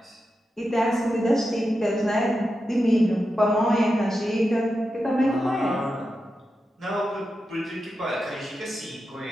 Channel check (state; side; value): normal; both; correlation 0.89